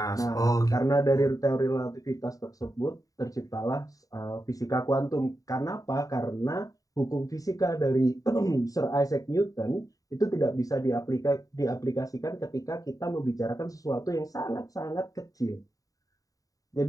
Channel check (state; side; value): late; right; 0.17 ms